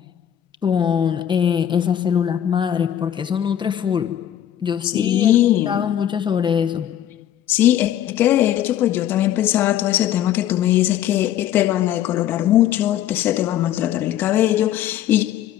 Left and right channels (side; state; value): right; quieter; 11.0 dB